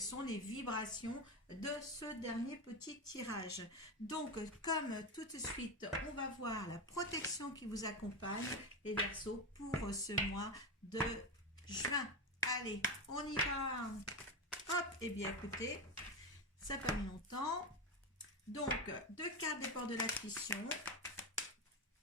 sont les vibrations de ce dernier petit tirage. Donc, comme tout de suite, on va voir la protection qui vous accompagne, les Verseaux, pour ce mois de juin. Allez, on y va. Hop, eh bien, écoutez, ça fait longtemps. Donc, 2 cartes des portes de l'intuition.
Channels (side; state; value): both; normal; correlation 0.15